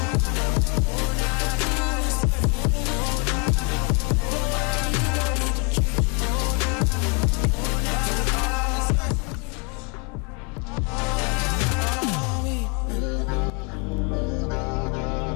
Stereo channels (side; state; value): right; quieter; 33.7 dB